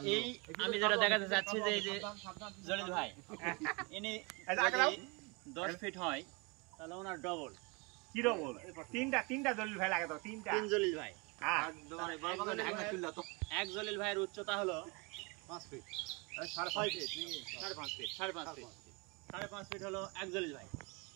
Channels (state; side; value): quieter; left; 29.3 dB